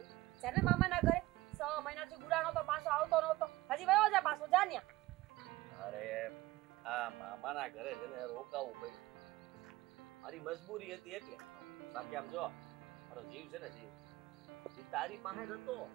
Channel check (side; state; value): left; quieter; 18.6 dB